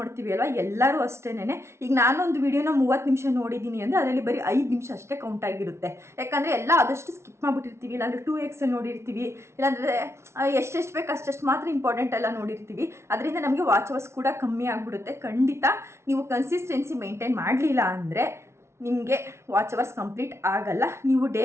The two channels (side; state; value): left; late; 0.13 ms